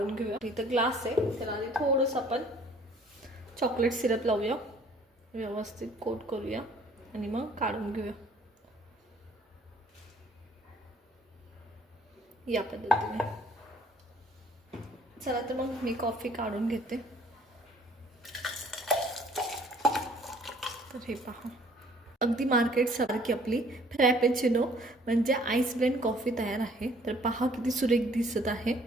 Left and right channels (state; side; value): normal; both; correlation 0.58